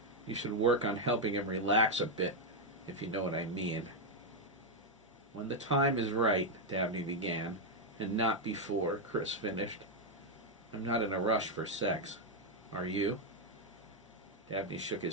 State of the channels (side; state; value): both; normal; correlation 0.01